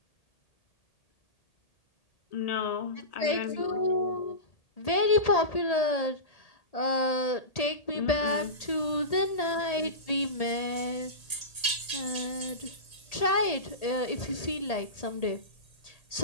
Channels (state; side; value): late; right; 1.8 ms